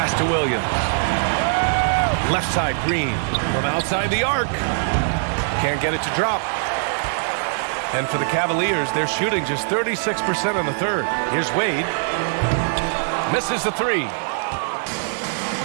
to Williams. Left side Green from outside the arc. Can't get it to drop. And for the Cavaliers, they're shooting just 36% in the third. Here's Wade. Misses the 3.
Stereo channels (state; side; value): silent; left; digital silence